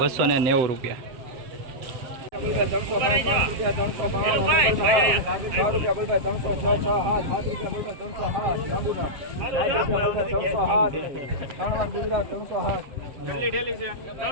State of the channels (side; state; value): left; late; 7.5 ms